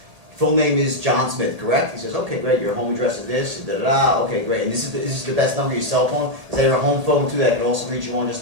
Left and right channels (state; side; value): late; left; 1.8 ms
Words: full name is John Smith, correct? He says, okay, great, your home address is this, da-da-da, okay, great. And this is the best number, your cell phone? Is that your home phone too, that I can also reach you on